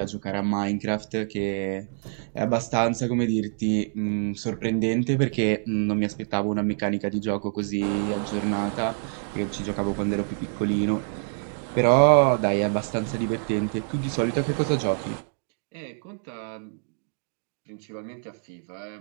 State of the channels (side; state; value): left; silent; digital silence